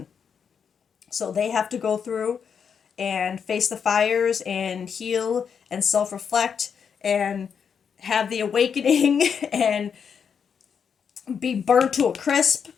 So they have to go through and face the fires and heal and self-reflect and have the awakening and be burnt to a crisp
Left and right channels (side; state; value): right; quieter; 6.9 dB